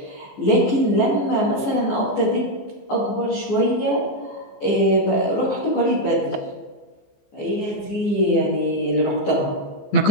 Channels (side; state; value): right; late; 15 ms